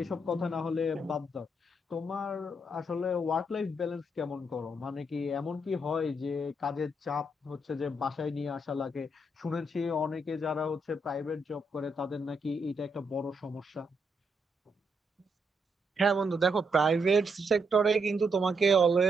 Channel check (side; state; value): both; normal; correlation 0.78